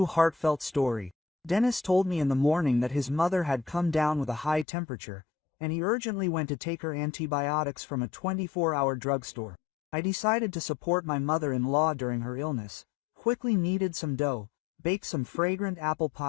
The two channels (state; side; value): drops out; right; at 4.7 s